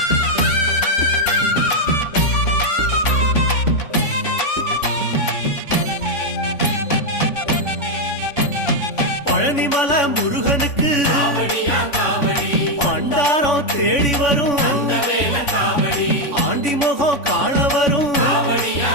பழனிமல முருகனுக்கு பண்டாரம் தேடி வரும், ஆண்டி முகம் காண வரும்,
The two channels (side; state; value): right; late; 3.5 ms